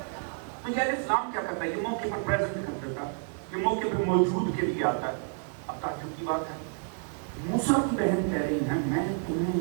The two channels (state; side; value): silent; left; 56 dB below the other